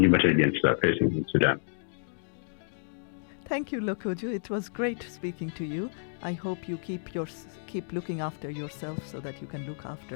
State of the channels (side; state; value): right; silent; digital silence